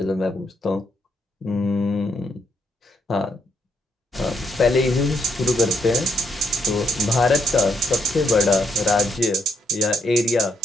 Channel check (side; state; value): both; normal; correlation 0.75